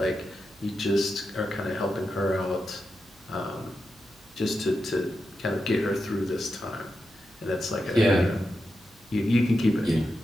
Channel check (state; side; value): noise; right; hum, 29 dB below the sound